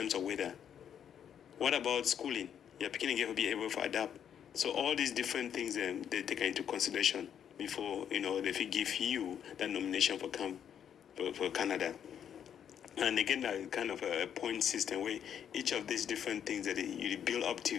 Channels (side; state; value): right; quieter; 8.8 dB